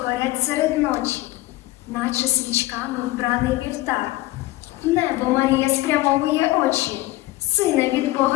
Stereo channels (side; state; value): right; quieter; 18.0 dB